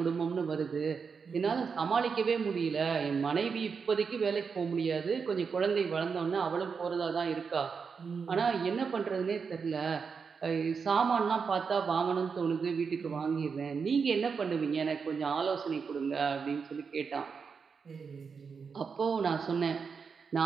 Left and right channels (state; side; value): quieter; left; 5.7 dB